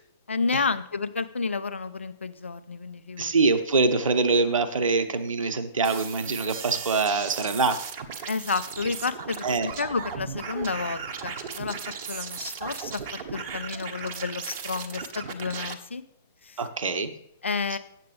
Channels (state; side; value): inverted; both; correlation -0.44